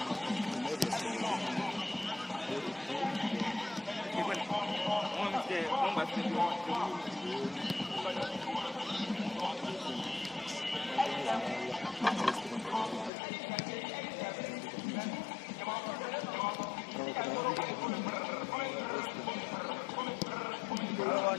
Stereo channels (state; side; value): drops out; right; at 13.1 s